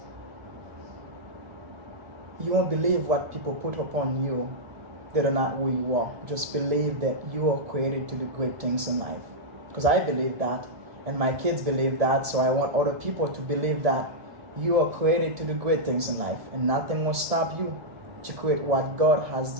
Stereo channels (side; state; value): left; late; 1.7 ms